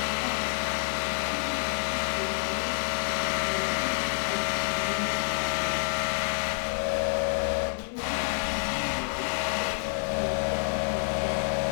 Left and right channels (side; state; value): right; silent; digital silence